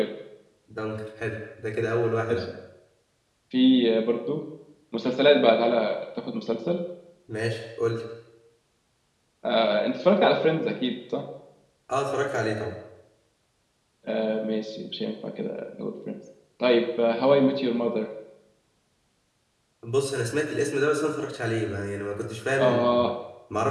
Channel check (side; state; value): both; identical; correlation 1.00